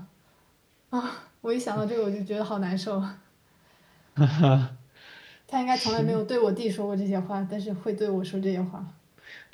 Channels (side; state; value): both; identical; correlation 1.00